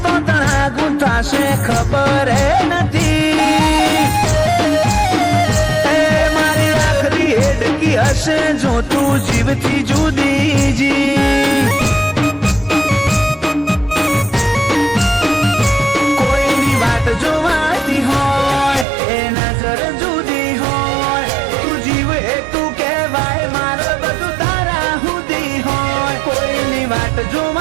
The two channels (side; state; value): left; drops out; at 18.9 s